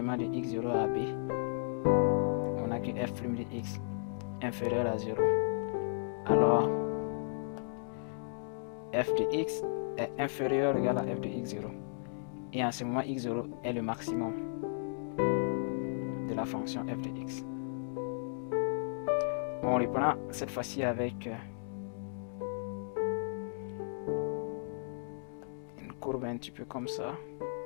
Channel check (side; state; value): right; silent; digital silence